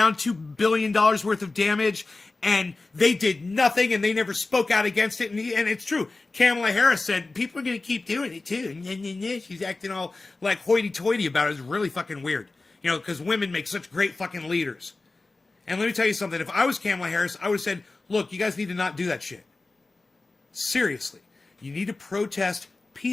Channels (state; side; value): quieter; right; 3.4 dB